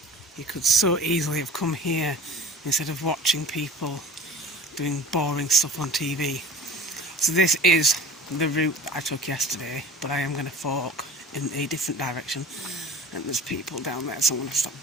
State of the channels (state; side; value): normal; both; correlation 0.42